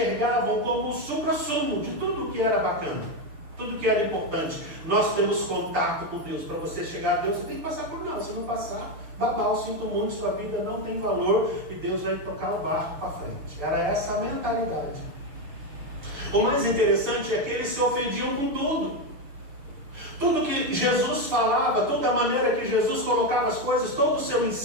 como o supra-sumo de tudo que era bacana, tudo que era importante. Nós temos contato com Deus. Para você chegar a Deus, você tem que passar por nós. Se não passar, babau, sinto muito, sua vida não tem valor e Deus vai tocar o barco para frente. Era essa a mentalidade. O mais interessante é que eles se ofendiam com tudo. Tudo que Jesus falava, toda a maneira que Jesus colocava as coisas, todo o seu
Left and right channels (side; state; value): left; late; 6.4 ms